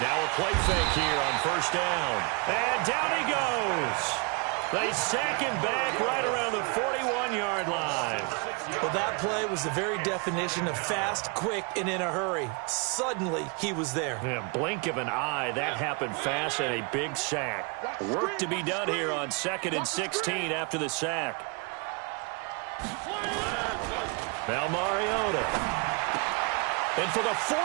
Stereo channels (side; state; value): left; quieter; 32.2 dB